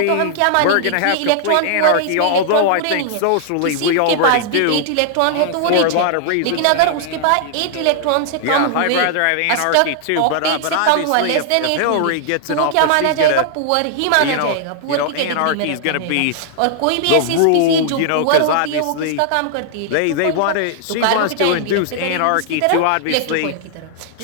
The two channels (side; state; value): both; different; correlation -0.01